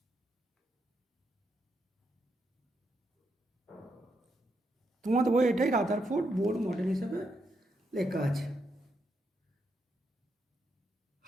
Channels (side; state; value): both; normal; correlation 0.80